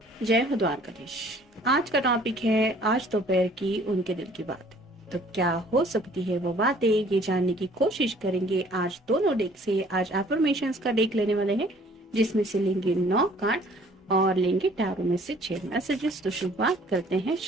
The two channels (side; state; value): both; normal; correlation 0.56